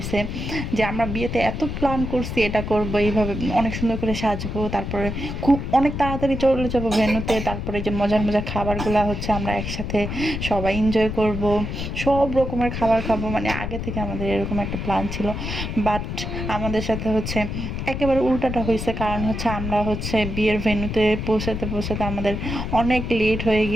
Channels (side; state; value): left; noise; rumble, 5 dB below the sound